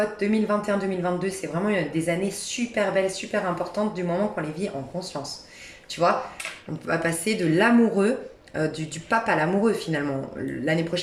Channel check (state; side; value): identical; both; correlation 1.00